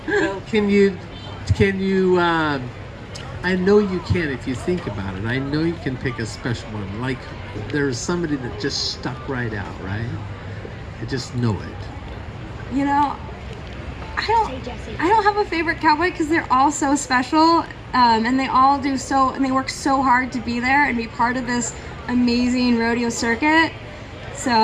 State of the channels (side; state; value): both; identical; correlation 1.00